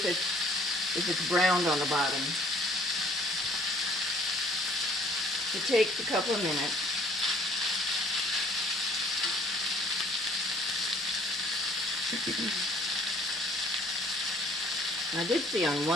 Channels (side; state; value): left; noise; hum, 30 dB below the sound